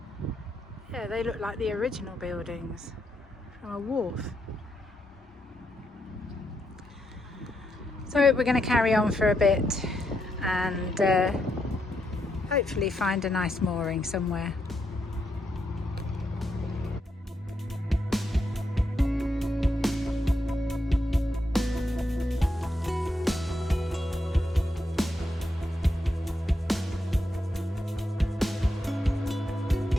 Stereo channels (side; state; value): both; normal; correlation 0.81